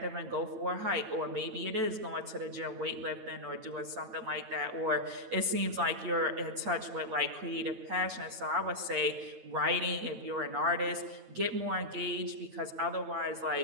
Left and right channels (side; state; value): left; late; 9.1 ms